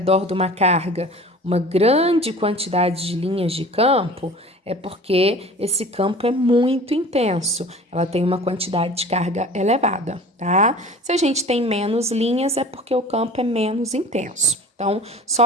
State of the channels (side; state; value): both; normal; correlation 0.42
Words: de uma carga uma grande quantidade de linhas de campo, é porque esse campo é muito intenso, ela tem uma quantidade de carga elevada, tá? Se a gente tem menos linhas, é porque o campo é menos intenso. Então,